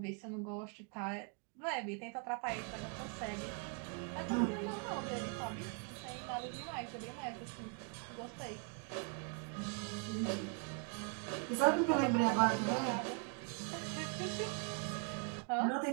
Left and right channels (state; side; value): quieter; left; 36.5 dB